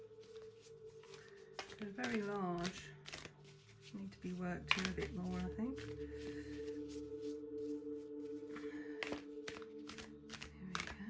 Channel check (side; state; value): both; identical; correlation 1.00